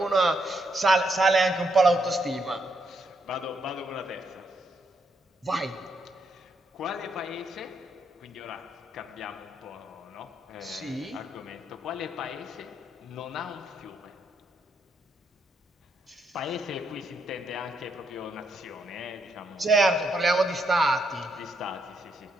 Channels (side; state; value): both; normal; correlation 0.77